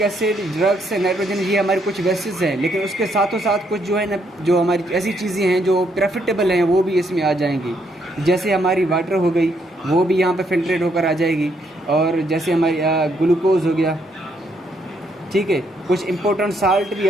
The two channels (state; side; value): normal; both; correlation 0.73